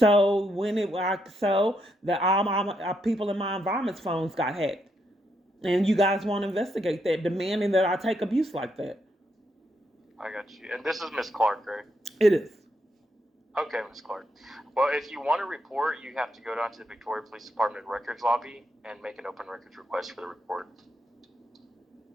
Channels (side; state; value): both; normal; correlation 0.79